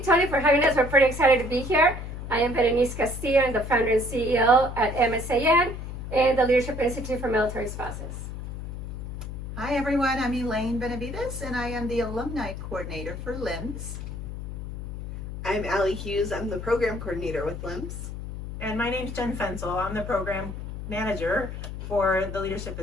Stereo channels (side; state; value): left; noise; hum, 8 dB below the sound